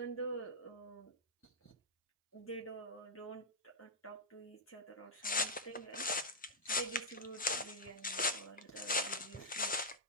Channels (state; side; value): normal; both; correlation -0.07